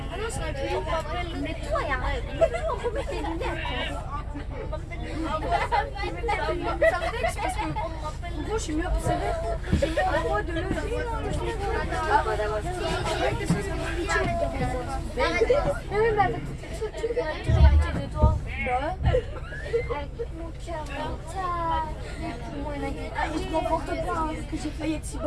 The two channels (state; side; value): identical; both; correlation 1.00